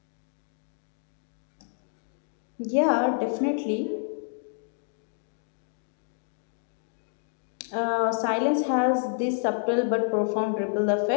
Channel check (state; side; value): silent; right; digital silence